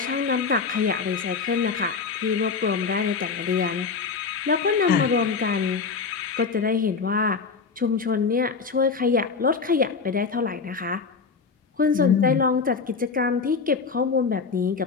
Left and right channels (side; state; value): right; quieter; 5.1 dB